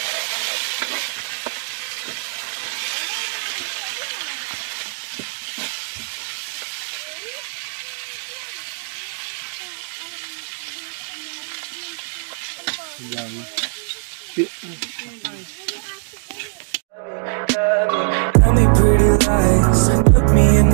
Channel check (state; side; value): silent; left; digital silence